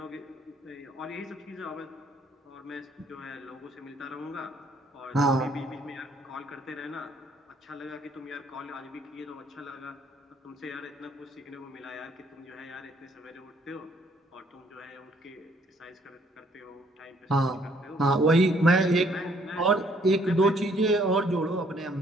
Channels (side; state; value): both; normal; correlation 0.65